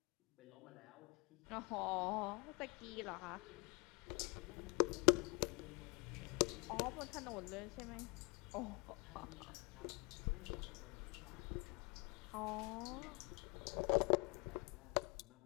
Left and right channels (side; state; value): right; quieter; 29.3 dB